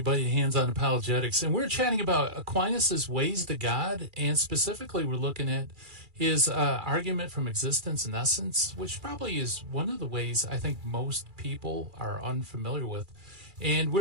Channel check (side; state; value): left; late; 2.4 ms